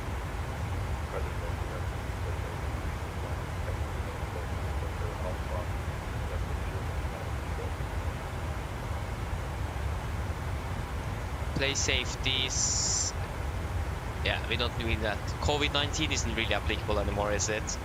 Play safeties. Yeah, we don't need that. COVID-19 isn't really applicable anymore, is it?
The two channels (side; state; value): both; identical; correlation 1.00